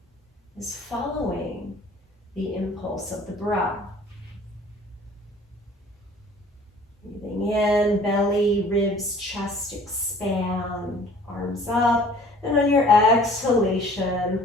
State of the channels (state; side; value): normal; both; correlation 0.51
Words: is following the impulse of the breath. Breathing in, belly, ribs, chest expand, arms up. And on your exhalation,